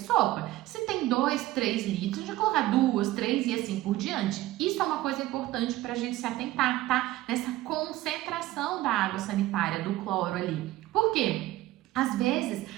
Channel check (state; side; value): quieter; left; 16.5 dB